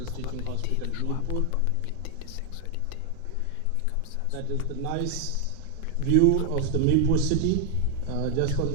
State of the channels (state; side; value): different; both; correlation 0.00